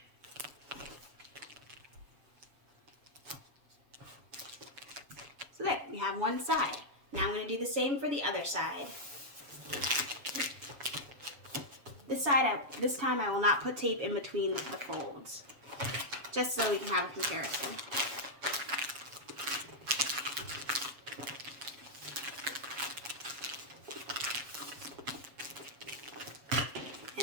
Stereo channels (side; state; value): left; late; 7.2 ms